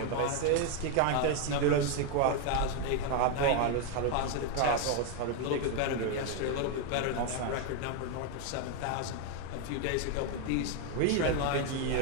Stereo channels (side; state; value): both; different; correlation 0.01